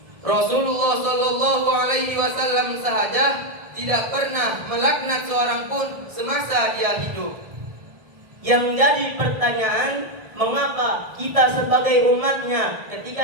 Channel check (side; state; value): left; late; 1.6 ms